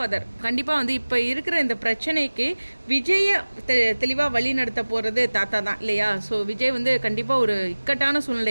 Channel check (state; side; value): inverted; both; correlation -1.00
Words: கண்டிப்பாக வந்து இப்போ இருக்கிற இந்த பிரச்சனைக்கு விஜயை தெளிவாக வழி நடத்த போகிறது தாத்தா தான் இல்லையா? ஸோ விஜய் வந்து கண்டிப்பாக ஒரு இக்கட்டான